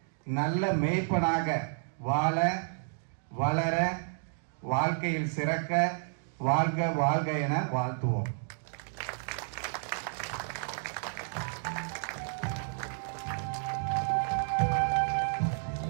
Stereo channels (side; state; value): left; silent; digital silence